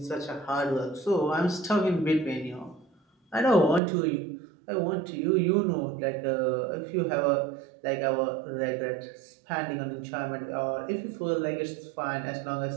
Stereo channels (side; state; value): left; drops out; at 3.8 s